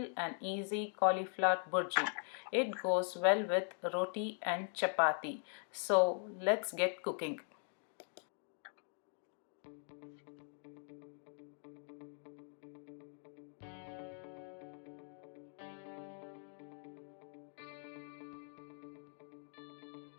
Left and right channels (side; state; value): right; silent; 50 dB below the other